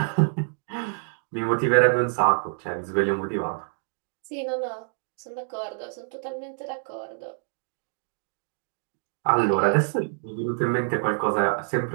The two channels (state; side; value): silent; left; digital silence